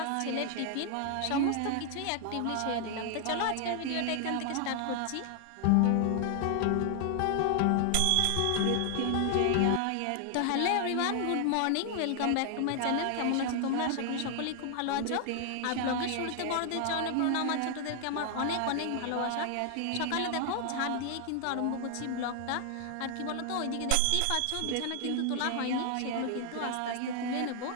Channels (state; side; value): different; both; correlation 0.00